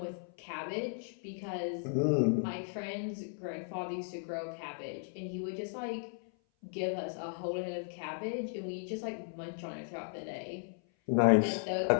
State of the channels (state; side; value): silent; right; 54 dB below the other